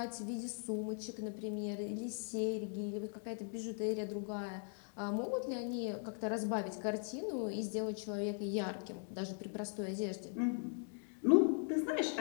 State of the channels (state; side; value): silent; right; 51 dB below the other